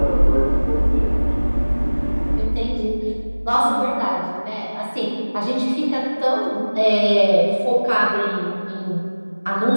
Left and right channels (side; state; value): both; inverted; correlation -1.00